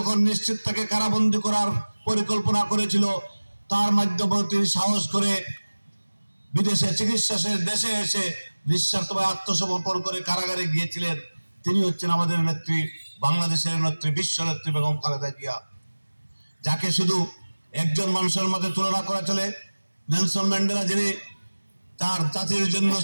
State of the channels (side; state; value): both; inverted; correlation -1.00